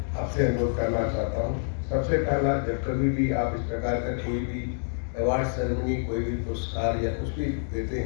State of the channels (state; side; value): silent; right; digital silence